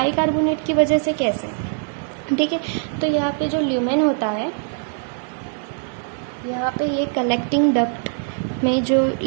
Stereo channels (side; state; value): left; silent; 59 dB below the other